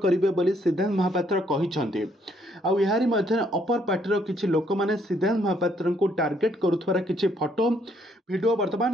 करिवे बोली सिद्धांत महापात्र कहिछन्ते। आउ यारी मध्य अपर पार्टी किछि लोक माने सिद्धांत महापात्र को टार्गेट करुथबार किछि फोटो वीडियो वर्तमान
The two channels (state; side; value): normal; both; correlation 0.69